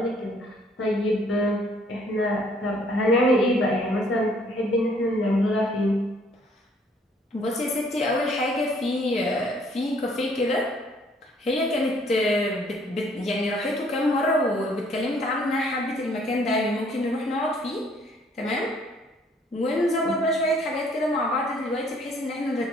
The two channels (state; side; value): normal; both; correlation 0.62